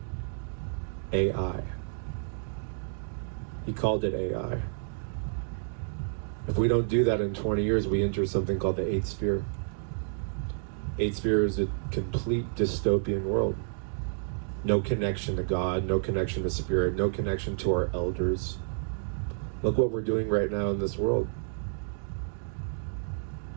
AI. He called it AI. If we don't do that in 20 years, we enter something called the 8th sphere. 8th sphere is a complete dystopian world. no connection to God, no connection to spirit, no connection to our elders. Look what we're doing right now in this world.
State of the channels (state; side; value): silent; left; digital silence